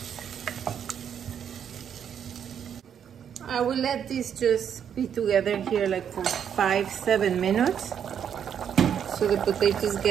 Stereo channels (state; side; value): quieter; left; 8.4 dB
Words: I will let this just be together here like for 5-7 minutes, so the potatoes